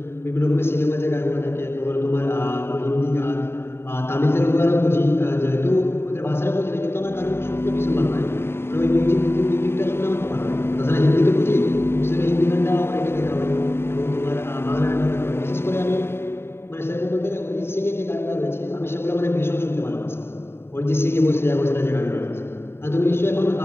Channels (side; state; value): right; late; 0.11 ms